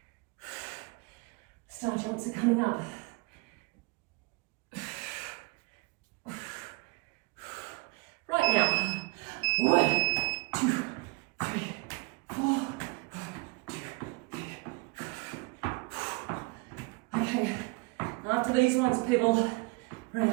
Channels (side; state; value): left; quieter; 27.7 dB